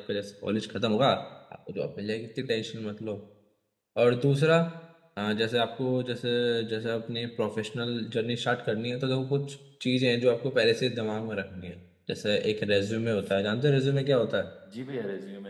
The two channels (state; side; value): identical; both; correlation 1.00